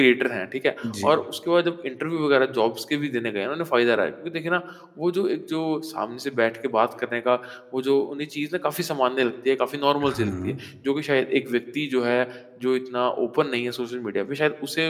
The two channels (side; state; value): both; identical; correlation 1.00